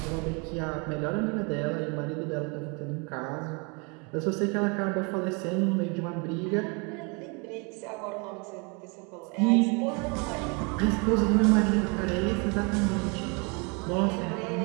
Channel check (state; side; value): quieter; left; 31.9 dB